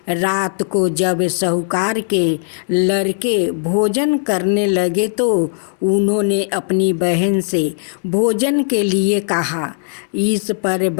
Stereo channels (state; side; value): silent; right; digital silence